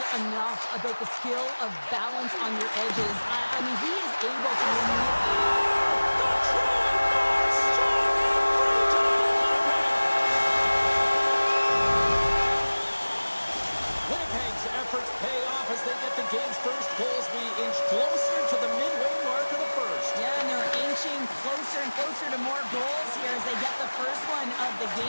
enough about the skill of balance on your edges. I mean, he is able to Winnipeg's efforts pay off as they get the game's first goals. We inch closer to the midway mark of the first. Yeah, and they're inching closer and closer to more goals here as they get the first one of the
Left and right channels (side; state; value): both; inverted; correlation -1.00